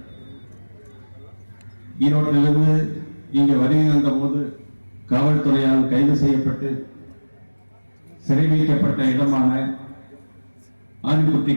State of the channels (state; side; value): inverted; both; correlation -1.00